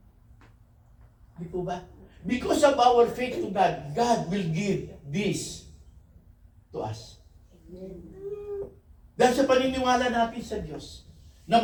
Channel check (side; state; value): both; identical; correlation 1.00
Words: Di po ba? Because of our faith to God, God will give this to us. Dahil sa paniniwala natin sa Diyos, na